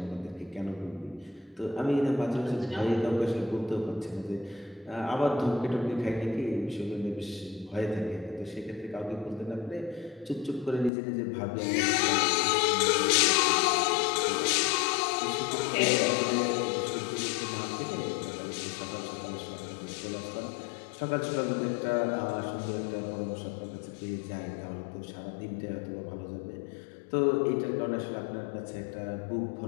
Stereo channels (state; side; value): drops out; right; at 10.9 s